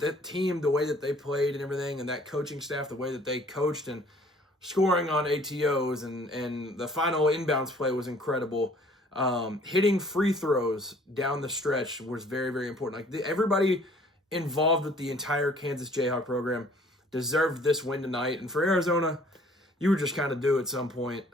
that team, the way that they played and everything, and that coaching staff, the way that they coached and scoring on ATOs and the final inbounds play was incredible. Hitting free throws down the stretch was very, very important. Everybody involved with the entire Kansas Jayhawk program deserved this win tonight. And for Arizona, you were just kind of due at some point.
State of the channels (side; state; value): both; normal; correlation 0.56